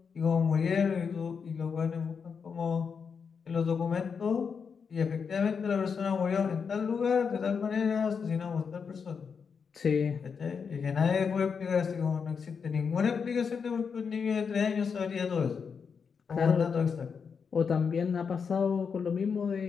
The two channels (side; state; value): right; quieter; 6.0 dB